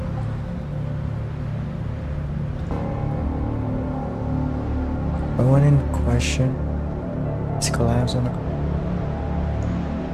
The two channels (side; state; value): both; identical; correlation 1.00